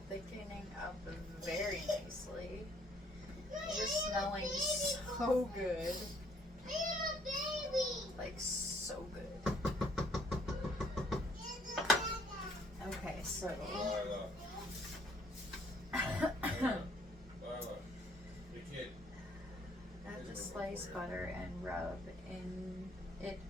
thickening up very nicely. Just smelling so good. Like, so good. Okay, so. Lila. Lila. The kid. Add the sliced butter and rub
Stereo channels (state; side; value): normal; both; correlation 0.63